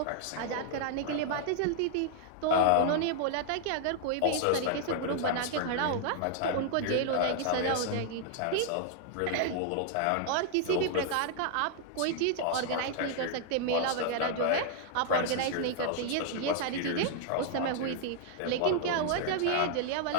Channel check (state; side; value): different; both; correlation -0.01